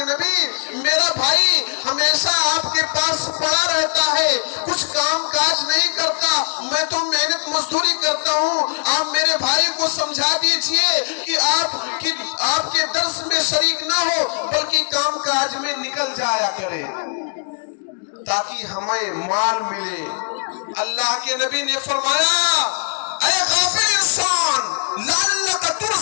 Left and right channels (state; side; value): silent; right; 66 dB below the other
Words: نبی، میرا بھائی ہمیشہ آپ کے پاس پڑا رہتا ہے، کچھ کام کاج نہیں کرتا، میں تو محنت مزدوری کرتا ہوں، آپ میرے بھائی کو سمجھا دیجئے کہ آپ کے درس میں شریک نہ ہو بلکہ کام کاج میں نکل جایا کرے تاکہ ہمیں مال ملے۔ اللہ کے نبی نے فرمایا، اے غافل انسان، لعلک